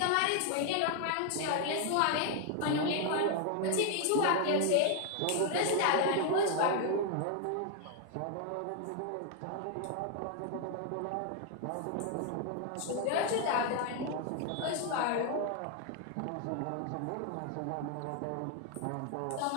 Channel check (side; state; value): both; different; correlation 0.00